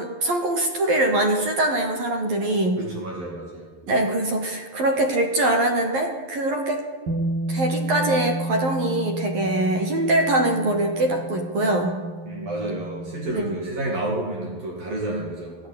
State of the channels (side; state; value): left; late; 11 ms